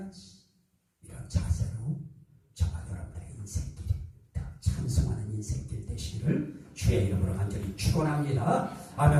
이런 자세로 저와 여러분들의 인생길이 더 찬송하는 인생길 되시기를 주의 이름으로 간절히 축원합니다.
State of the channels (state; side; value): identical; both; correlation 1.00